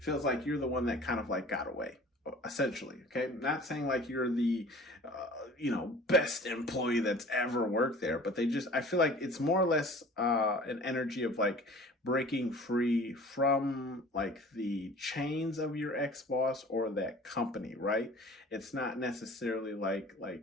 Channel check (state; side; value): normal; both; correlation 0.45